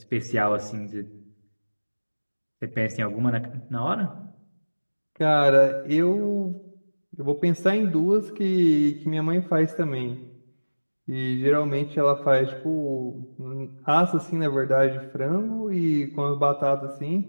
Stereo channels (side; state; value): both; inverted; correlation -1.00